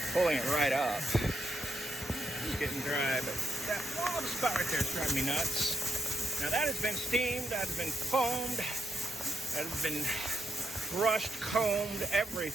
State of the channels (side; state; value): both; normal; correlation 0.80